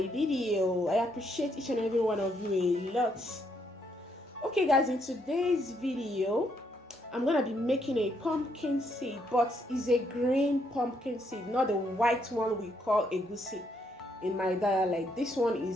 video. I appreciate each and every one of you a lot. Okay guys, in today's video I'm gonna be making a pumpkin seed, but it's a green pumpkin seed, not the white one we call egusi in my dialect. This one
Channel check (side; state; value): both; normal; correlation 0.74